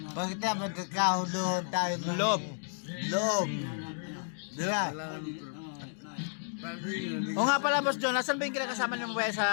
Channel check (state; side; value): silent; right; digital silence